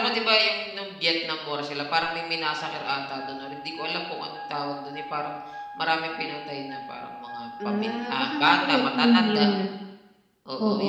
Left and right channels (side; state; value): both; identical; correlation 1.00